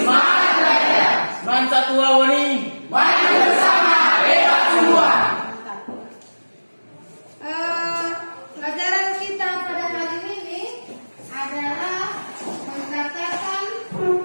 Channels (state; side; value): inverted; both; correlation -1.00